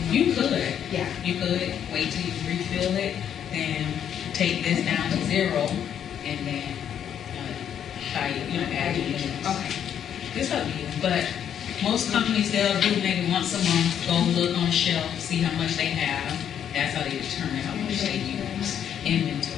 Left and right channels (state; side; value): quieter; right; 9.2 dB